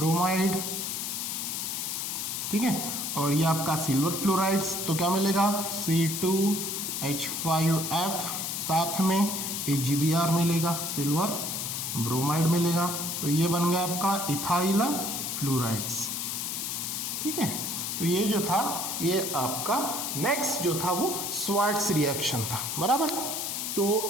ठीक है। और ये आपका सिल्वर फ्लोराइड्स, तो क्या मिलेगा? C2H5F, साथ में AgBr मिलेगा, सिल्वर ब्रोमाइड मिलेगा, तो ये बन गया आपका इथाइल फ्लोराइड्स, ठीक है। तो ये जो था ये आपका नेक्स्ट जो था वो श्वार्ट्ज रिएक्शन था, बराबर।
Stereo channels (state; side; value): noise; left; hiss, 3 dB below the sound